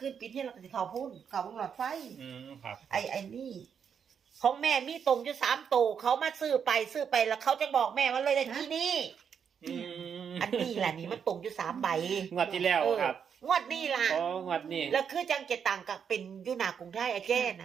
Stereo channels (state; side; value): quieter; left; 7.3 dB